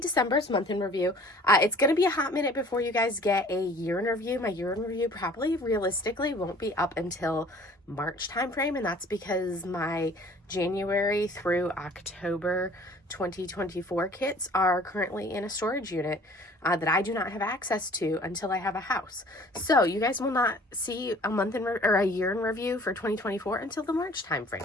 month in review. It's going to be a hot minute before you guys get a year in review. My year in review probably realistically won't be up until March timeframe, and that's because my January through October 2024 kits are currently in a storage unit that I do not have access to until I have a house. So you guys will not see a month in or a year in review for 2024 until the March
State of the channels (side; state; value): both; normal; correlation 0.51